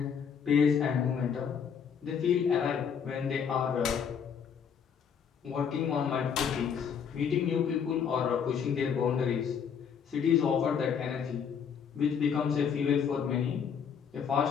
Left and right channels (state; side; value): quieter; right; 7.2 dB